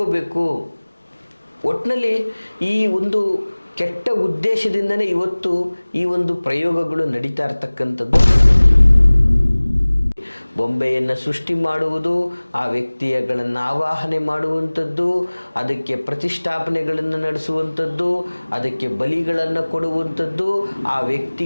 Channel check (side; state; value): both; inverted; correlation -1.00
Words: ಒಟ್ಟಿನಲ್ಲಿ ಈ ಒಂದು ಕೆಟ್ಟ ಉದ್ದೇಶದಿಂದನೇ ಇವತ್ತು ಈ ಒಂದು ಪ್ರಯೋಗಗಳು ನಡೀತಾ ಇರ್ತಕ್ಕಂಥದ್ದು. ಬೊಂಬೆಯನ್ನು ಸೃಷ್ಟಿ ಮಾಡುವುದು, ಆ ವ್ಯಕ್ತಿಗಳನ್ನು ಆವಾಹನೆ ಮಾಡುವಂಥದ್ದು, ಅದಕ್ಕೆ ಪ್ರತಿಷ್ಠಾಪನೆಗಳನ್ನು ನಡೆಸುವಂಥದ್ದು, ಅದಕ್ಕೆ ಬಲಿಗಳನ್ನು ಕೊಡುವಂಥದ್ದು, ಆ